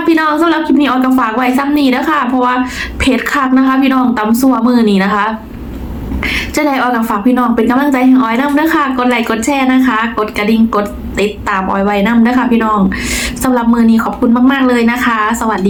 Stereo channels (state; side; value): identical; both; correlation 1.00